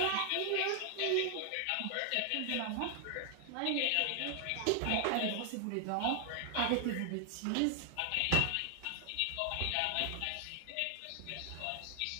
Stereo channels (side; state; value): both; different; correlation 0.00